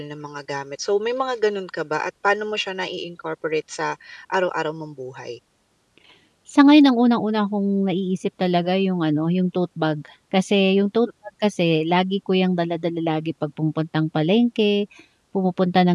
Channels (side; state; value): both; identical; correlation 1.00